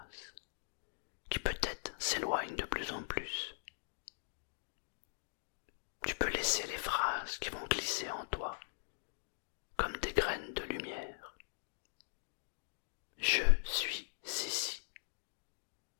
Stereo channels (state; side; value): silent; right; digital silence